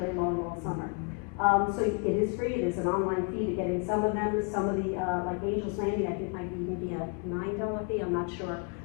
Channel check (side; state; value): right; quieter; 37.6 dB